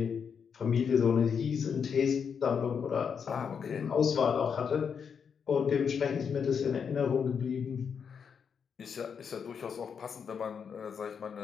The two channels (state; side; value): quieter; right; 6.7 dB